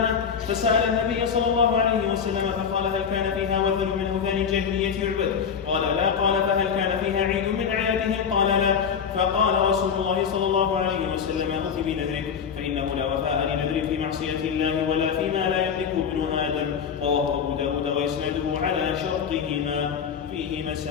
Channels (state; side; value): quieter; right; 7.0 dB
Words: فسأل النبي صلى الله عليه وسلم فقال هل كان فيها وثن من أوثان الجاهلية يعبد؟ قال لا. قال فهل كان فيها عيد من أعيادهم؟ قال لا. فقال رسول الله صلى الله عليه وسلم أوف بنذرك فإنه لا وفاء لنذر في معصية الله ولا فيما لا يملك ابن آدم. رواه أبو داود ويسنده على شرطهما. فيه